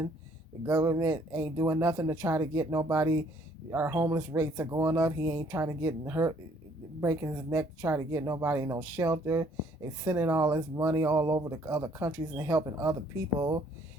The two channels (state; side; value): normal; both; correlation 0.62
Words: The government ain't doing nothing to try to get nobody. Our homeless rates are going up. He ain't trying to get hurt, breaking his neck to try to get nobody no shelter. They sending all this money all over the other countries and helping other people